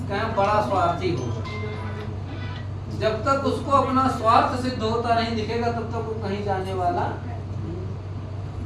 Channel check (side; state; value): both; identical; correlation 1.00